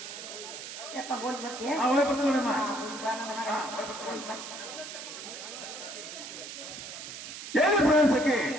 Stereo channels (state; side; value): noise; right; hiss, 10 dB below the sound